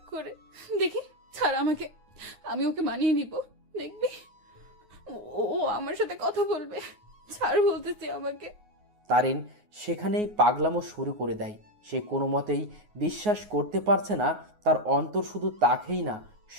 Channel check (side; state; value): left; late; 9.5 ms